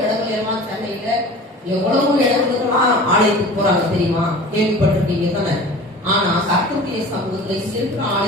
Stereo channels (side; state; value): both; normal; correlation 0.40